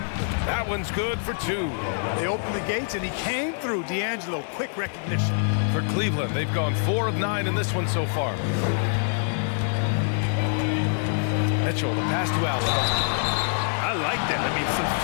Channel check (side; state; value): right; silent; digital silence